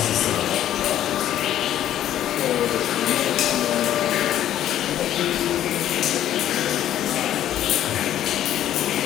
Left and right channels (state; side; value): quieter; right; 11.7 dB